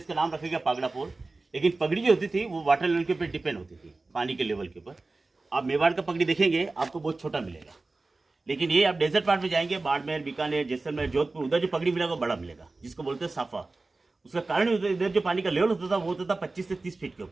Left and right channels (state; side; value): quieter; left; 3.4 dB